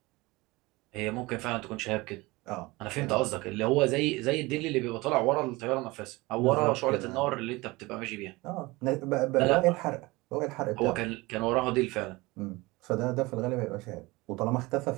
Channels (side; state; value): left; quieter; 22.3 dB